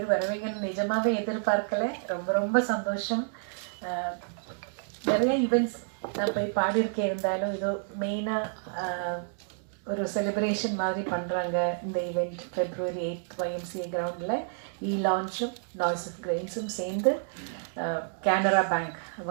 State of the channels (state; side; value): silent; left; digital silence